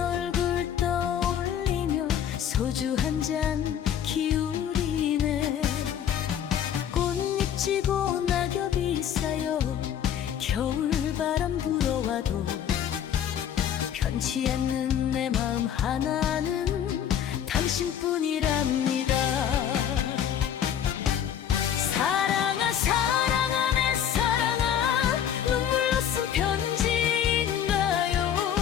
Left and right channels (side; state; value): right; quieter; 9.4 dB